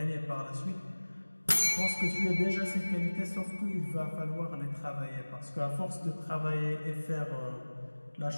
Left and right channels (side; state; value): both; inverted; correlation -1.00